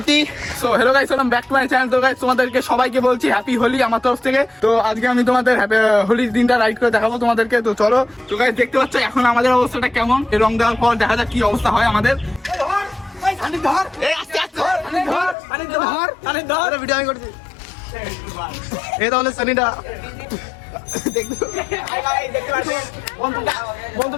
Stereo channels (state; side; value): drops out; right; at 15.4 s